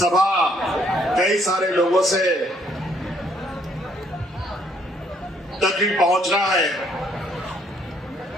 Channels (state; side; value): normal; both; correlation 0.67